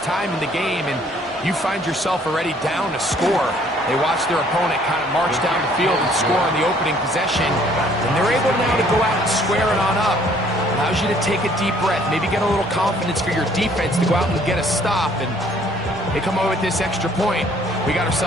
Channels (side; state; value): both; normal; correlation 0.60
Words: time in the game, and you find yourself already down a score. They watch their opponent kind of march down the field and score on the opening possession, and they're able now to go out and square it on up. Allows you to take a deep breath, maybe get a little confidence for your defense to go out and get a stop, and they come away with this extra point. We got